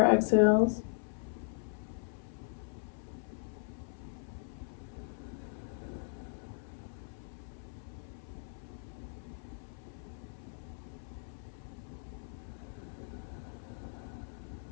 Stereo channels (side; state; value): right; silent; 52 dB below the other